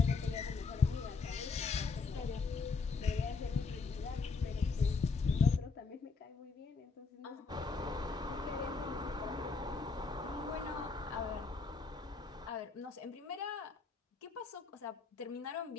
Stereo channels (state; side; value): quieter; right; 4.6 dB